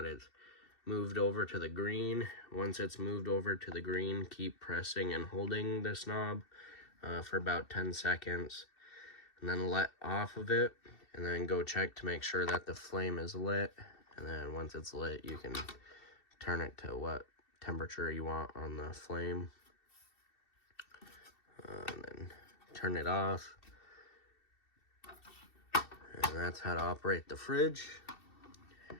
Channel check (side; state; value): right; late; 2.7 ms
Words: it's moved over to the green. Once it's moved over to the green, keep pressing and holding this knob for about 10 seconds, and then let off of it, and then go check to make sure that the flame is lit. And then once it's lit, you can turn it to what temperature you want on the flame, and then turn it off. And that's how to operate the fridge.